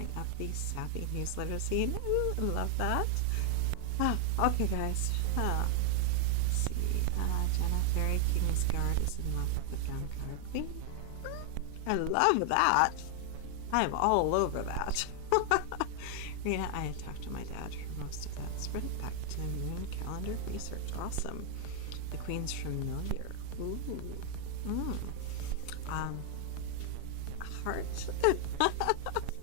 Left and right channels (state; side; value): different; both; correlation 0.00